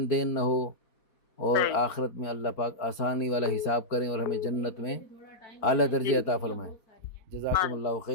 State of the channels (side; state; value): right; late; 4.5 ms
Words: دین نہ ہو، اور صحیح. آخرت میں اللہ پاک آسانی والا حساب کریں اور ہمیں جنت میں اعلیٰ جی درجے عطا فرمائیں. ہاں جزاکم اللہ